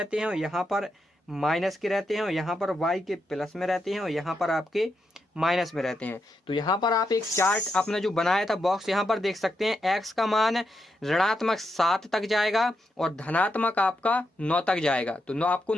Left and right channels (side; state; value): both; normal; correlation 0.83